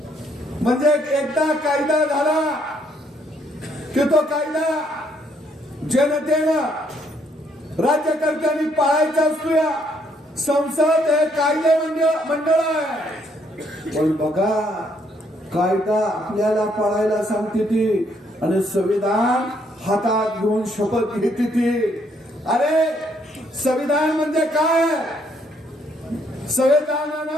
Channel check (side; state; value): both; normal; correlation 0.70